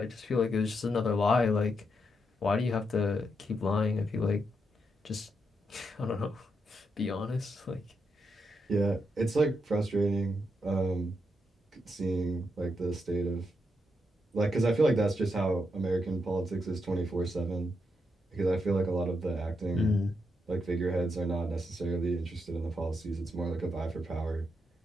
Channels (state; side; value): normal; both; correlation 0.82